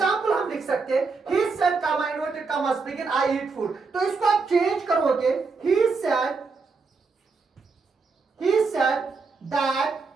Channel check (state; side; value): quieter; left; 4.5 dB